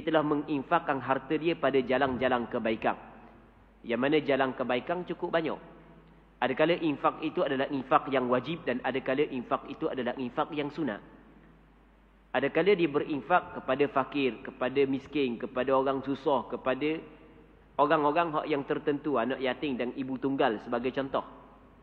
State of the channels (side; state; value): both; identical; correlation 1.00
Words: telah menginfakkan harta dia pada jalan-jalan kebaikan. Yang mana jalan kebaikan cukup banyak. Adakala infak itu adalah infak yang wajib, dan adakala infak itu adalah infak yang sunat. Adakala dia berinfak kepada fakir, kepada miskin, kepada orang susah, kepada orang-orang yang tertentu, anak yatim dan ibu tunggal sebagai contoh.